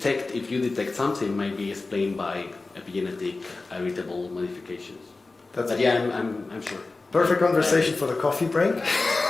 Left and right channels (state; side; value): quieter; right; 3.5 dB